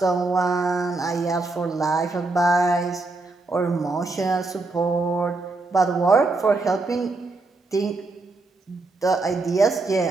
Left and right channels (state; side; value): quieter; left; 3.4 dB